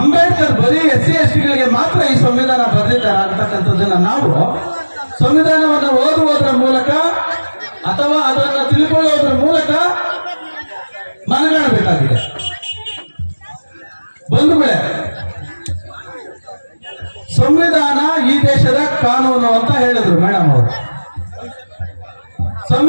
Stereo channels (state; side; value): inverted; both; correlation -1.00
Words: ಅಂಬೇಡ್ಕರ್ ಬರೀ SC/STಗಳಿಗೆ ಮಾತ್ರ ಈ ಸಂವಿಧಾನ ಬರೆದಿದ್ದಾರೆ ಅಂತಕ್ಕಂಥದ್ದನ್ನ ನಾವು ಸಂವಿಧಾನವನ್ನು ಓದುವುದರ ಮೂಲಕ ಅಥವಾ ಅದನ್ನು ತಿಳ್ಕೊಳ್ಳೋದ್ರ ಮೂಲಕ ಮನಗಾಣಬೇಕಾಗಿದೆ. ಬಂಧುಗಳೇ, ಸಂವಿಧಾನ ಈ ದೇಶದ ಕಾನೂನು ಅಂತ ಹೇಳಿದ್ರು ಮೇಡಮ್ ಅವರು.